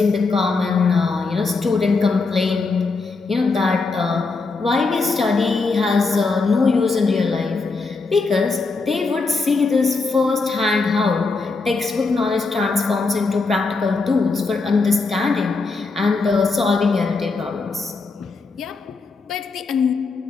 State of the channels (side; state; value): right; quieter; 4.1 dB